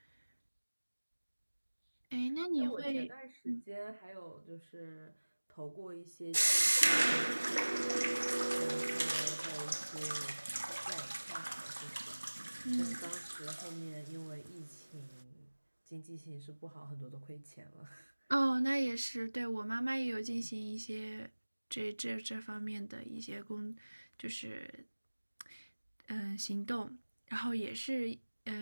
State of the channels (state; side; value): inverted; both; correlation -1.00